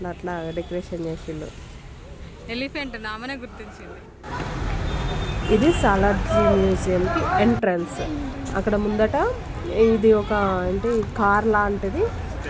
అట్లా డెకరేషన్ చేసిండు. ఎలిఫెంట్ నామనే గుర్తించింది. ఇది సాలార్ మ్యూజియంకి ఎంట్రన్స్. అక్కడ ముందట ఇది ఒక అంటే కార్ లాంటిది,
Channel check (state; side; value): identical; both; correlation 1.00